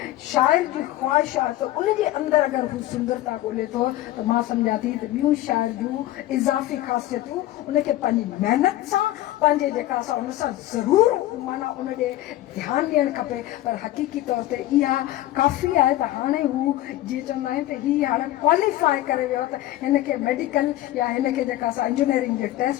शाइर जी ख़्वाहिश आहे त उनजे अंदरि अगरि हू सुंदरता ॻोल्हे थो त मां सम्झां थी त ॿियूं शाइर जूं इज़ाफ़ी ख़ासियतूं उनखे पंहिंजी महिनत सां, पंहिंजे जेका सा उन सां ज़रूरु माना उन ॾे ध्यानु ॾियणु खपे। पर हक़ीक़ी तौर ते इहा काफ़ी आहे त हाणे हू जीअं चवंदा आहिनि त हीअ हाणे क्वालिफाई करे वियो त हिनखे मेडिकल या हिनखे जेका सा इंजीनियरिंग जे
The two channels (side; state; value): right; quieter; 15.2 dB